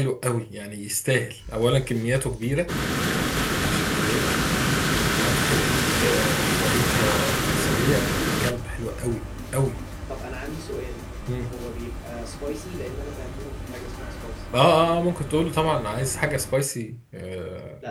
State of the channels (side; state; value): both; identical; correlation 1.00